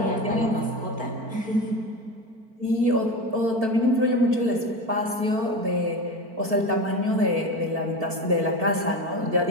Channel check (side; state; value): left; late; 4.5 ms